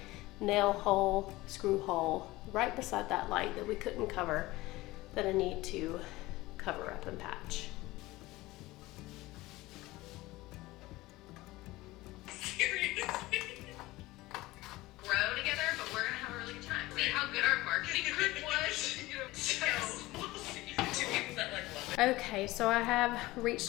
nail hole, screw hole, right beside that light that we couldn't cover, that I need to cover up and patch. Seriously. Grow together, but we're gonna have a really good time. See how good our marketing group was? So we'll see. Two people that like love it. Okay, so I have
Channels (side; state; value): right; quieter; 19.3 dB